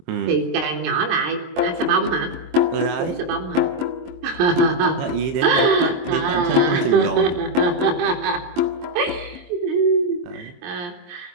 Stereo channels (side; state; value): left; late; 23 ms